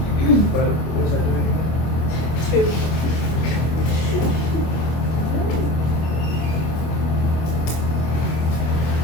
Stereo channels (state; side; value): late; right; 25 ms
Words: What was that? 2.